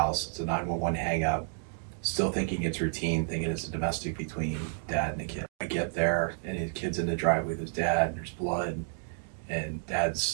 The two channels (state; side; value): silent; left; 57 dB below the other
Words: It's a 911 hang up. Still thinking it's routine, thinking it's a domestic between dad and a kid. I get there, and the kid's in the driveway with his dad, and there's blood, and